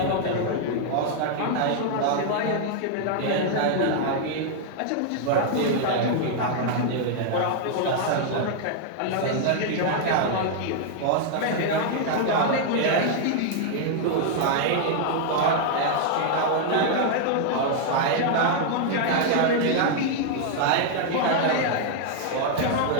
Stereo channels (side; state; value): both; different; correlation 0.00